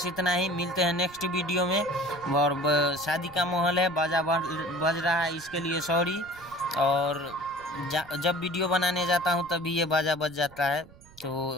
इतना ही। मिलते हैं नेक्स्ट वीडियो में। और शादी का माहौल है, बाजा बज रहा है, इसके लिए सॉरी। और जब वीडियो बनाने जाता हूं तभी ये बाजा बज जाता है।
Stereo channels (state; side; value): noise; right; rumble, 23 dB below the sound